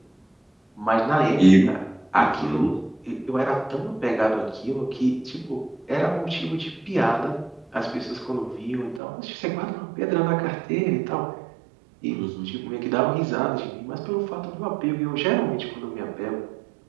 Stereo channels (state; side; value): drops out; left; at 9.0 s